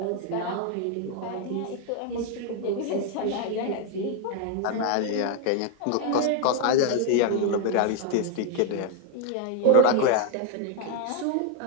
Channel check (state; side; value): different; both; correlation 0.01